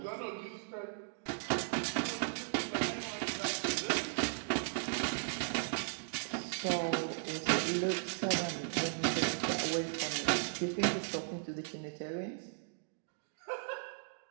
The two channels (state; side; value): silent; left; digital silence